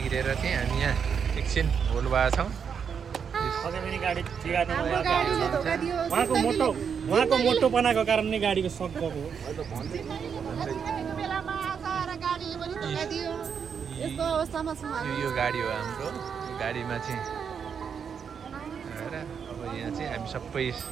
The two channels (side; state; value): left; quieter; 6.9 dB